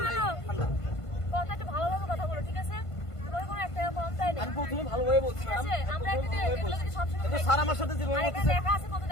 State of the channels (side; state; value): right; late; 1.5 ms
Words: ঠান্ডা কথা একটু ভালোভাবে কথা বলো ঠিক আছে তোমার কোনো একটা কম তাই না আমি প্রথমে ভালোভাবে বলছি ঠিক ম্যাডাম আছে আমরা একটা এগুলো কি সব সময় কিন্তু স্যার আমার সাথে যেভাবে আর এখানে বলতেছে লেখা আছে কত